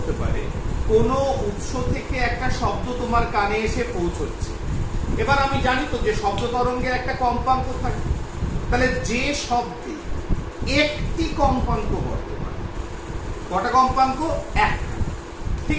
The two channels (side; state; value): both; identical; correlation 1.00